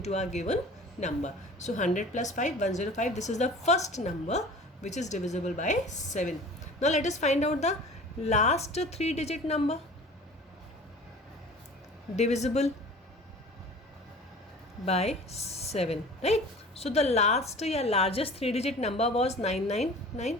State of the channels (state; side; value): normal; both; correlation 0.42